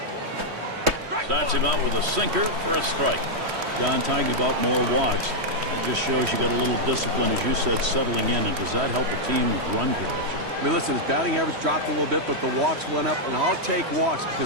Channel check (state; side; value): late; left; 3.1 ms